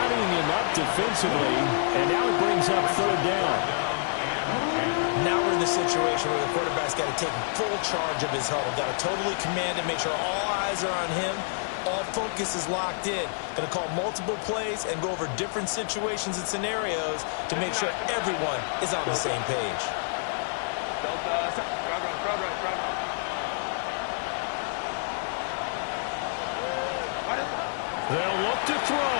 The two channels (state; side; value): silent; right; 60 dB below the other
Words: him up defensively, and now it brings up 3rd down. Now we're in the situation where the quarterback's got to take full charge of his huddle. Got to totally command it, make sure all eyes are on him. All focus is locked in. Going to call multiple plays and go over different situations and scenarios to make sure everyone is on the same page. They'll look to